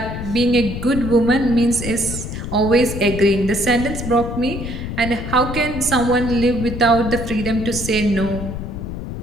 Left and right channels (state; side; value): noise; left; rumble, 7 dB below the sound